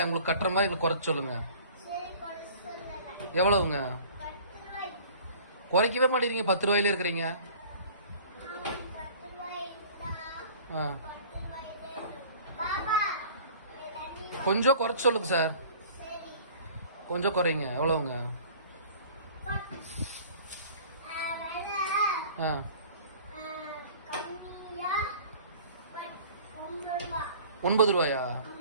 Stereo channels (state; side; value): inverted; both; correlation -0.47